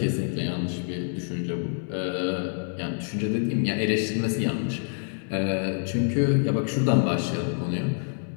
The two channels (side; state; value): right; silent; 59 dB below the other